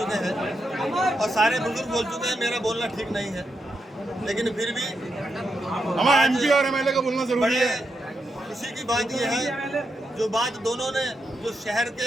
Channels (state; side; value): normal; both; correlation 0.84